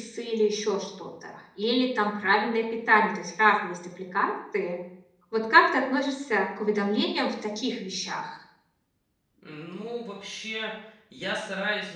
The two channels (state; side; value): identical; both; correlation 1.00